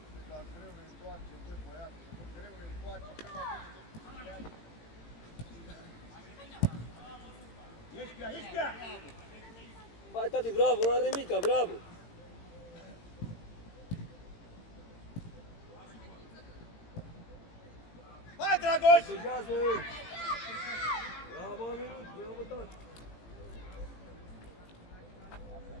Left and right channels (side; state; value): right; late; 18 ms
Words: Dar greu ne întoarce, băi, băiatul. Greu ne întoarce. Ești pe ea! Hai, tati, bravo, n-are nimica, bravo. Hai, Dragoș! Protejează! Bravo, Aminut, bravo, tati.